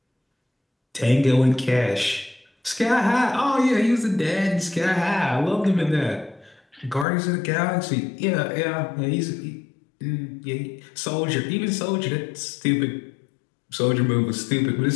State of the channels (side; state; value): right; drops out; at 7.1 s